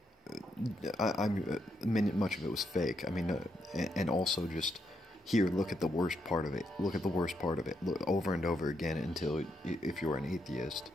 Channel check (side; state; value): both; normal; correlation 0.78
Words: of it was fake. I mean, and also just, here, look at the worst part of it. Look at the worst part of it. Look over and over again until, if you're an atheist,